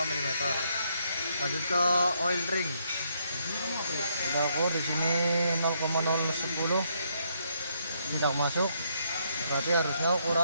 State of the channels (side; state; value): both; inverted; correlation -0.74